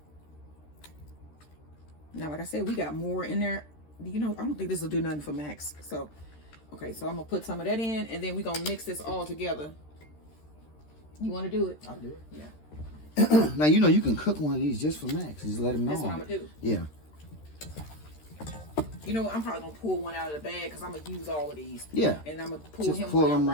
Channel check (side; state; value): right; late; 13 ms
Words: Now, like I said, we got more in there. You know, I don't think this will do nothing for Max. So, okay, so I'm gonna put some of that in, and then we're gonna mix this all together. You want to do it? I'll do it. Yeah. Now, you know, you can cook one of these just for Max. Just let him know. That's what I'm going to do. Yeah. You know, I'm probably going to pull one out of the bag, because I'm going to use all of these. Yeah. And I'm going to pull just him pull one